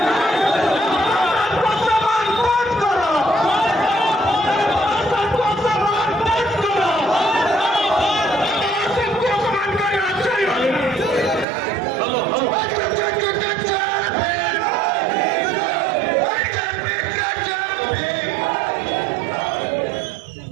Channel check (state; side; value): drops out; left; at 11.5 s